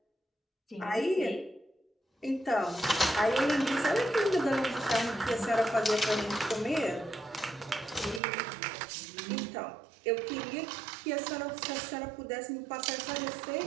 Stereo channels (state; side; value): drops out; left; at 8.2 s